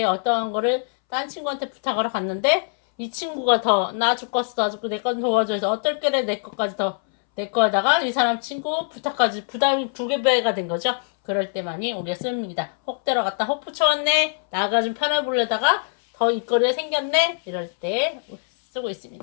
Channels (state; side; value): silent; right; 62 dB below the other